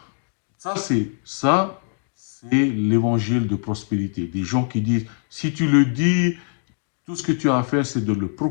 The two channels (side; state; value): right; silent; digital silence